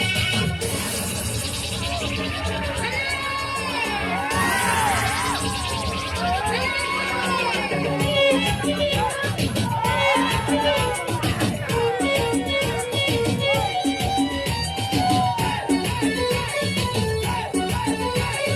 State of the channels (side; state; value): both; identical; correlation 1.00